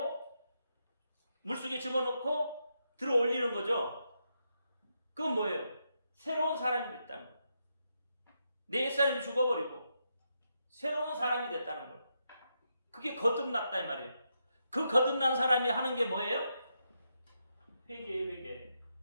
물속에 집어넣고 들어 올리는 거죠. 그건 뭐예요? 새로운 사람이 됐다는 거예요. 내 옛사람이 죽어버리고 새로운 사람이 됐다는 거예요. 그게 거듭났다 이 말이에요. 그 거듭난 사람이 하는 게 뭐예요?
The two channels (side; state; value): both; inverted; correlation -0.83